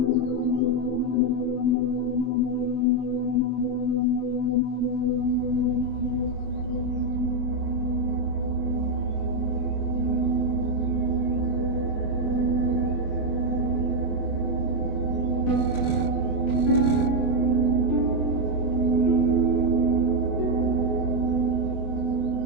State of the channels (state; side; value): late; right; 24 ms